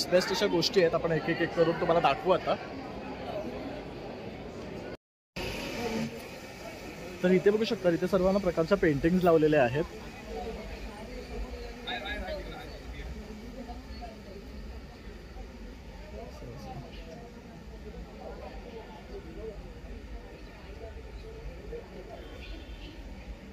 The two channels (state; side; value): identical; both; correlation 1.00